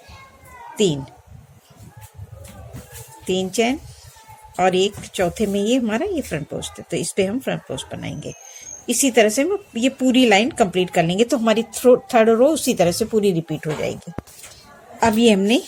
3, 3 चैन और एक चौथे में ये हमारा ये फ्रंट पोस्ट है, तो इस पे हम फ्रंट पोस्ट बनाएंगे। इसी तरह से हम ये पूरी लाइन कंप्लीट कर लेंगे, तो हमारी थर्ड रो उसी तरह से पूरी रिपीट हो जाएगी। अब ये हमने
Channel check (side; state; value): both; identical; correlation 1.00